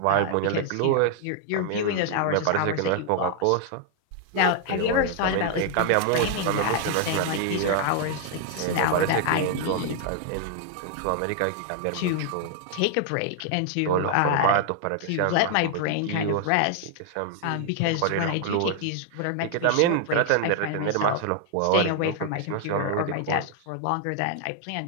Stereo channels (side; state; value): both; different; correlation 0.00